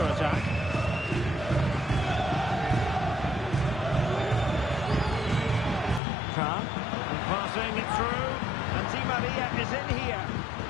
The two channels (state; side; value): drops out; right; at 6.0 s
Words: Khan, passing it through, and Di Maria is in here.